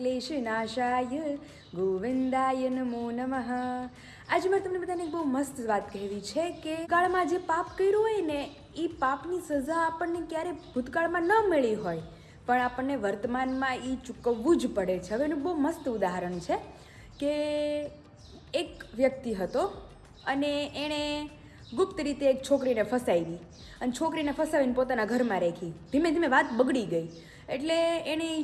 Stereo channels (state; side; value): identical; both; correlation 1.00